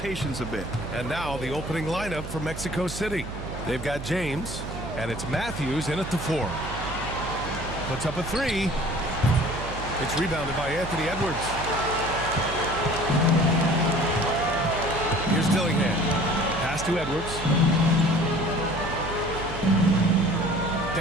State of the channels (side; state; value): right; noise; hum, 9 dB below the sound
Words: a bit. And now the opening lineup for Mexico City. They've got James, and it's Matthews in at the 4. Puts up a 3. It's rebounded by Anthony Edwards. Here's Dillingham. Pass to Edwards.